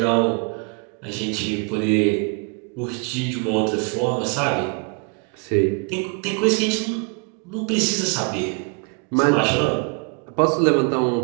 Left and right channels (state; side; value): quieter; left; 33.6 dB